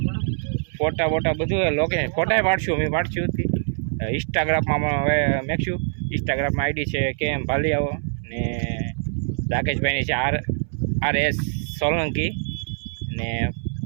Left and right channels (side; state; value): left; silent; 62 dB below the other